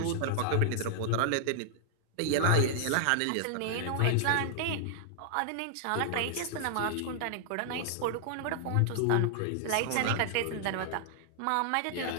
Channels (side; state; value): both; different; correlation 0.00